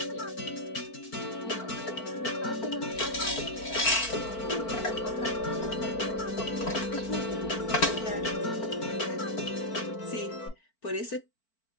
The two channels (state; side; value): late; right; 4.4 ms